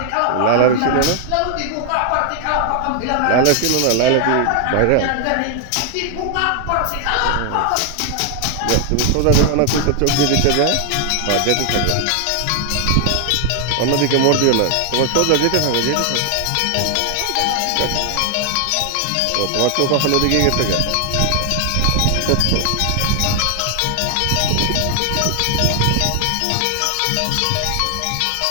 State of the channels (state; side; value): different; both; correlation 0.00